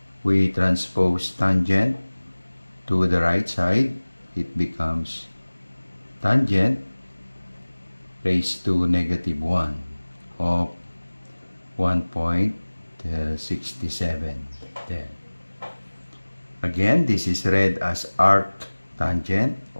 We transpose tangent to the right side. It becomes tangent raised to -1 of 1.67. Then again, this is read as arctangent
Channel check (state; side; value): inverted; both; correlation -1.00